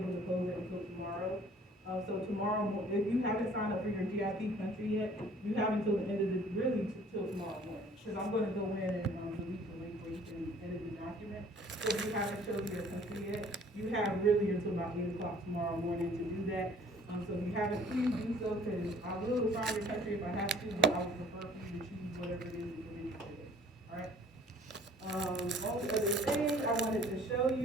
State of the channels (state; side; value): normal; both; correlation 0.54